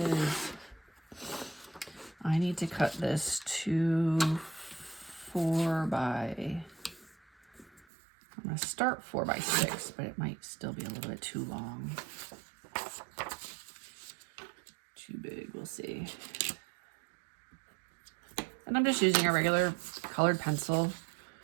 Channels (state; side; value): drops out; left; at 7.9 s